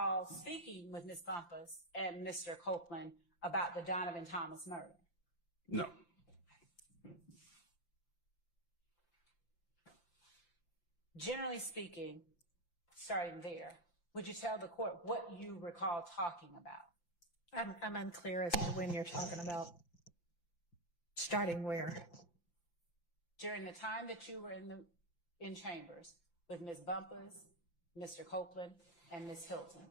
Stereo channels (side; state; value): right; late; 5.8 ms